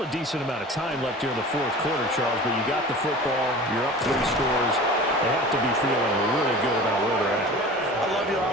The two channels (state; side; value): normal; both; correlation 0.38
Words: a decent amount of time left here in the 4th quarter, Charles, but you got the football, you're up 3 scores. They have to be feeling really good about where they're at. I love your